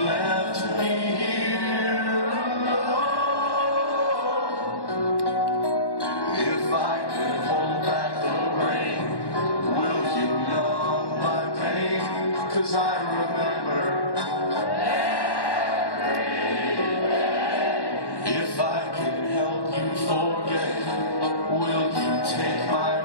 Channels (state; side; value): late; right; 1.1 ms